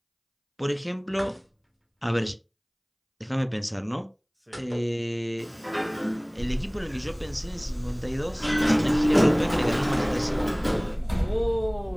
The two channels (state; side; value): identical; both; correlation 1.00